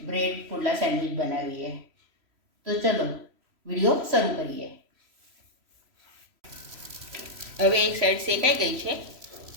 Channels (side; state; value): left; late; 3.0 ms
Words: બ્રેડ પુડલા સેન્ડવિચ બનાવીએ. તો ચલો વિડીયો શરૂ કરીએ. હવે એક સાઈડ શેકાઈ ગઈ છે.